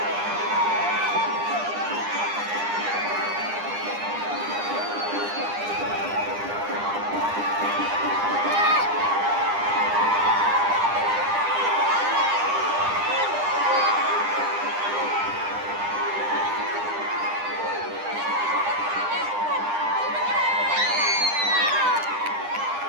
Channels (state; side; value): late; left; 9.9 ms